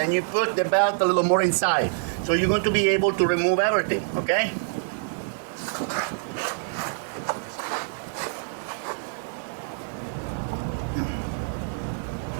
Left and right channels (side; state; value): left; silent; digital silence